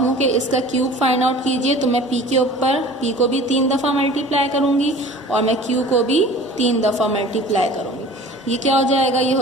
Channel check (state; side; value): normal; both; correlation 0.43